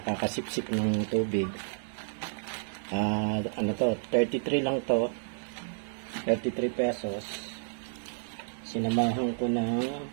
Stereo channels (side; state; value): left; silent; 57 dB below the other